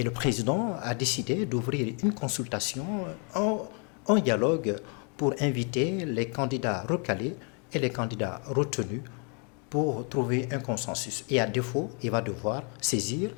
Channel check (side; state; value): right; quieter; 37.8 dB